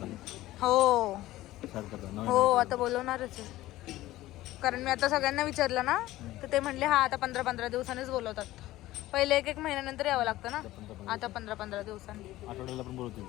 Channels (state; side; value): quieter; right; 16.3 dB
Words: हो आता बोलवणारच आहे. कारण मी आता सगळ्यांना विचारलं ना, तर ते म्हणले हा आता 15-15 दिवसांनीच बोलवतात. पहिले 1-1 महिन्यानंतर यावं लागतं ना, आता 15-15 दिवसांनी. आठवड्याला पण बोलवतील